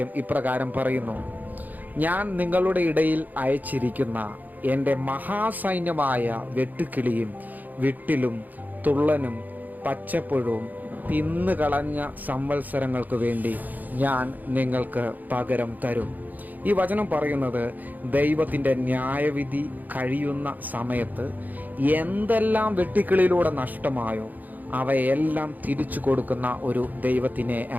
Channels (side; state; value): left; late; 0.083 ms